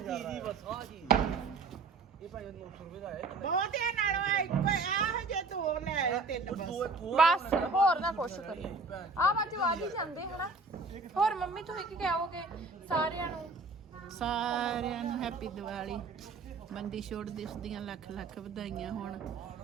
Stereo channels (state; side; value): quieter; left; 3.9 dB